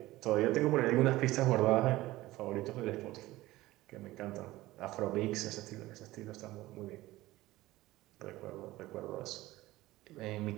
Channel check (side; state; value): left; quieter; 17.6 dB